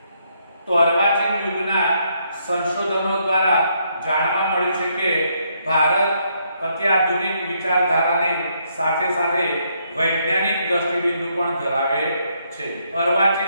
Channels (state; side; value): inverted; both; correlation -0.74